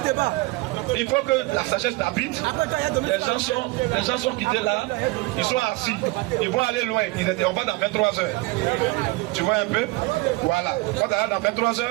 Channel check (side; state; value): left; quieter; 22.7 dB